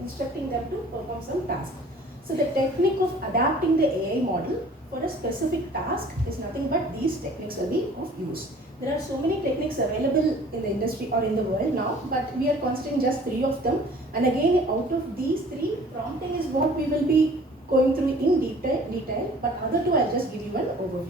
them to perform some task. So the technique of adapting the AI model for a specific task is nothing but these techniques will be of use. There are so many techniques available in the industry or in the world now, but we are considering just 3 of them. And again, out of these 3, prompting is what we will be going through in detail, but other 2 I'll just give you an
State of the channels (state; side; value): normal; both; correlation 0.50